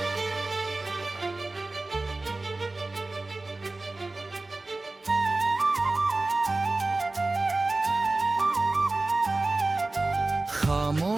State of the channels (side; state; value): left; quieter; 3.1 dB